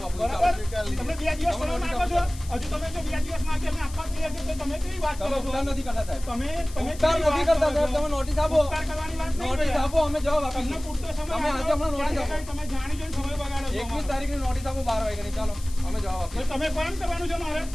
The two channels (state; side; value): noise; left; hiss, 17 dB below the sound